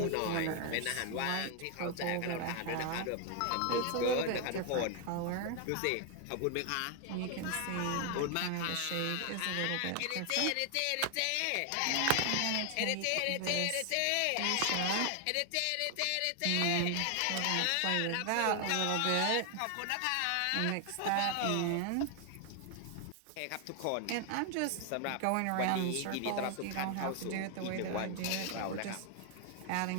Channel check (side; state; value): both; different; correlation 0.00